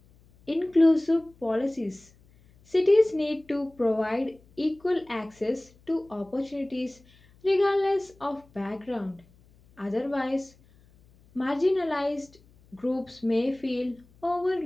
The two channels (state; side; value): noise; left; hum, 29 dB below the sound